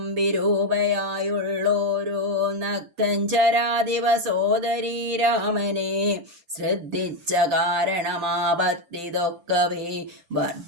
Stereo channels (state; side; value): late; left; 5.8 ms